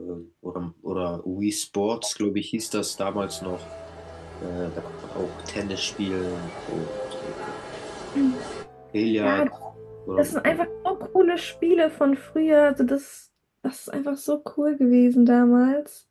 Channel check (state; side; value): identical; both; correlation 1.00